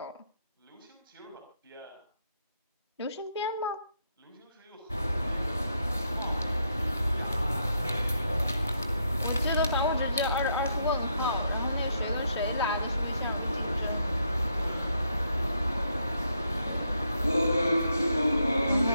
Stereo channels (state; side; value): inverted; both; correlation -0.77